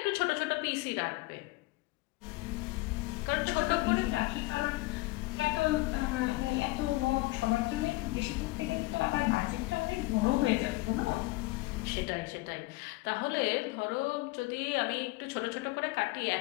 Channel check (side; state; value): right; quieter; 21.6 dB